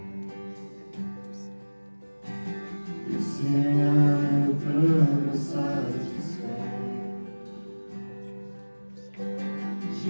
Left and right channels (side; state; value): both; inverted; correlation -1.00